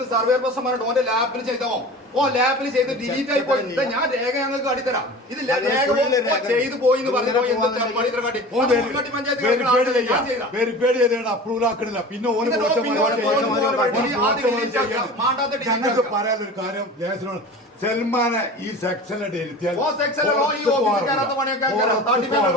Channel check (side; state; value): both; normal; correlation 0.36